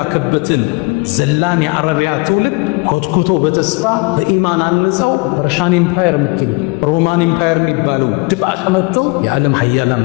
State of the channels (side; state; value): right; quieter; 27.2 dB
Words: ዘላን የአረቢያ ትውልድ ኮትኩቶ በተስፋ በኢማን አንጸው ፐርሻን ኢምፓየር የምትሉ ሮማን ኢምፓየር የሚባለው ድባቅ መጥተው የዓለም ሀያላን